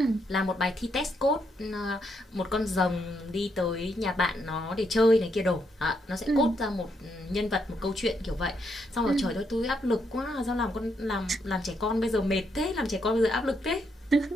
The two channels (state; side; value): normal; both; correlation 0.77